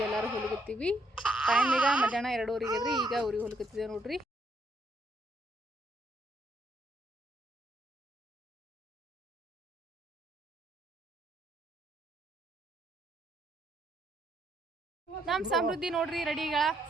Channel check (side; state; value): both; normal; correlation 0.72